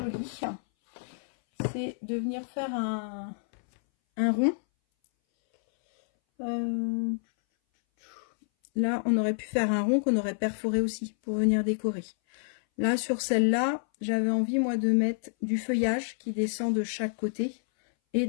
c'est de venir faire un rond. Là on aurait pu faire un rond qu'on aurait perforé aussi pour venir décorer. Là, sur celle-là, j'avais envie, moi, de mettre du feuillage qui descend de chaque côté et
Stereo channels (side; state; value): right; silent; 59 dB below the other